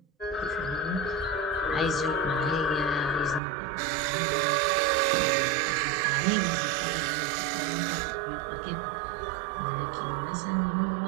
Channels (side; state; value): left; drops out; at 3.4 s